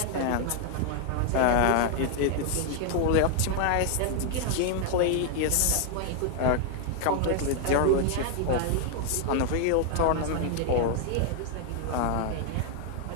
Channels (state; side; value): different; both; correlation 0.00